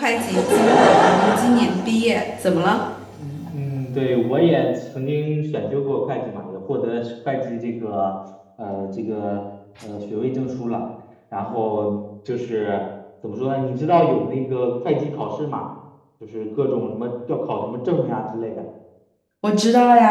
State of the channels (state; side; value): identical; both; correlation 1.00